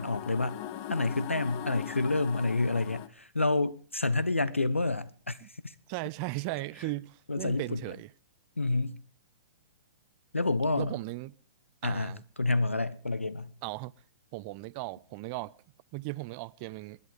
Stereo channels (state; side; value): inverted; both; correlation -0.76